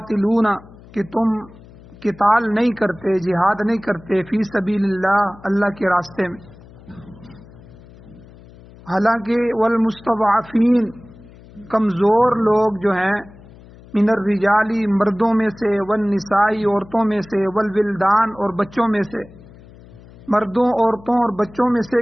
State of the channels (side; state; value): left; noise; hum, 22 dB below the sound